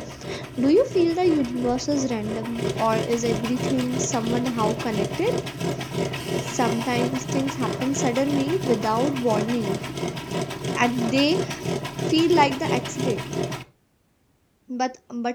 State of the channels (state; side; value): identical; both; correlation 1.00